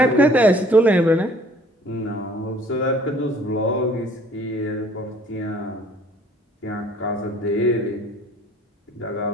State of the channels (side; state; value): both; normal; correlation 0.55